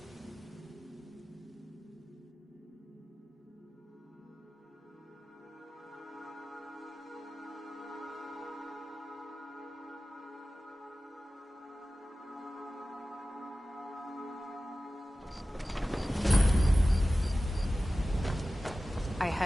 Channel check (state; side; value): normal; both; correlation 0.96